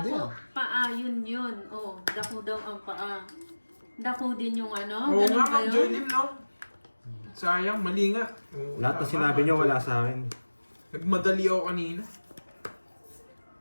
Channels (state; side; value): inverted; both; correlation -1.00